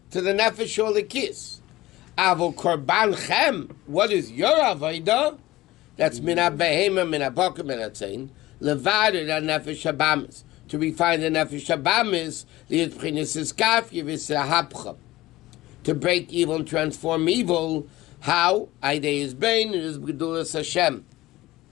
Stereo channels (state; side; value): quieter; right; 17.7 dB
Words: to the nefesh shel Elikis. Avo korban chem, what is your Aveda? That's mina behema, mina boker, mina tzayin. Levader the nefesh shabamis, to refine the nefesh shabamis, li'et b'chinas iskaf yivisahapcha, to break evil and transform evil. How? Aidei is bain, it is b'gedulas Hashem.